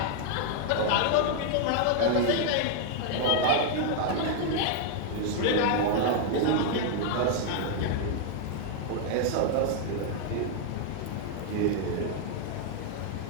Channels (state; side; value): different; both; correlation 0.00